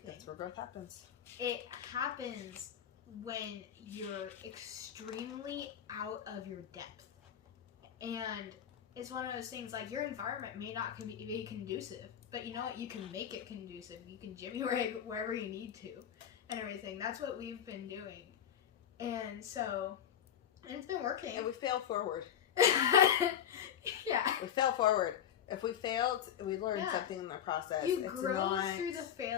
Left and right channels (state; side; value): quieter; right; 9.3 dB